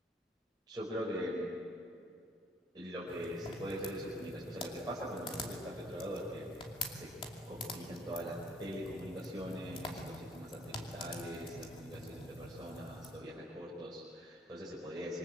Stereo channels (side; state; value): both; normal; correlation 0.61